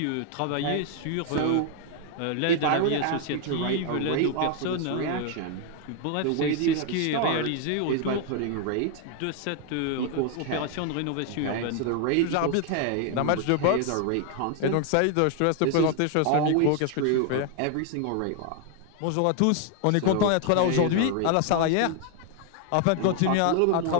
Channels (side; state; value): both; different; correlation 0.00